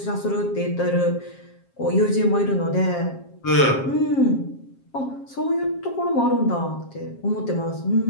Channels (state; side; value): late; right; 7.4 ms